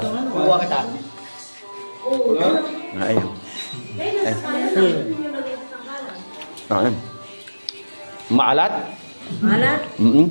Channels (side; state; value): both; inverted; correlation -1.00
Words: Kuha kita. Ayun. Ayun. Maalat? Malat.